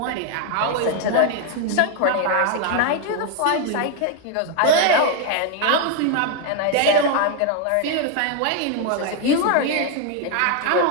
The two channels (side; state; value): both; different; correlation 0.01